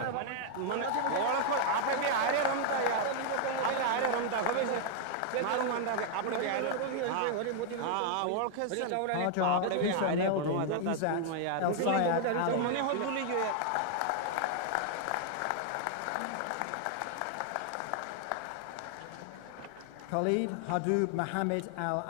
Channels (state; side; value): different; both; correlation 0.00